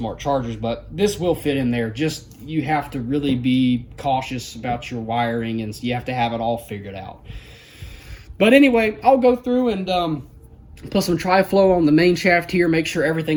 chargers, but this will fit in there. Just, you have to really be cautious about your wiring, and you have to have it all figured out. But anyway, I'll go through and put some tri-flow on the main shaft here, make sure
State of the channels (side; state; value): both; identical; correlation 1.00